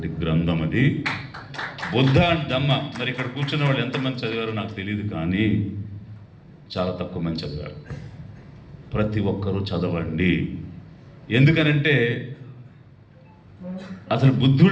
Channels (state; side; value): identical; both; correlation 1.00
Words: గ్రంథం అది బుద్ధ అండ్ ధమ్మ. మరి ఇక్కడ కూర్చున్న వాళ్ళు ఎంతమంది చదివారో నాకు తెలియదు, కానీ చాలా తక్కువ మంది చదివారు. ప్రతి ఒక్కరూ చదవండి. ఎందుకనంటే అసలు